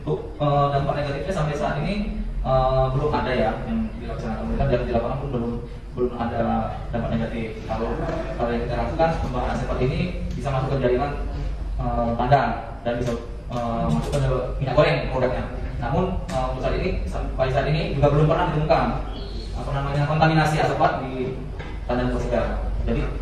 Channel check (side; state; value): both; identical; correlation 1.00